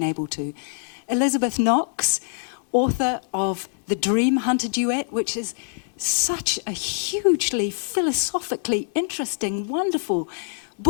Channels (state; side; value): silent; right; digital silence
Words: able to. Elizabeth Knox, author of The Dream Hunter Duet, which is such a hugely philosophically interesting, wonderful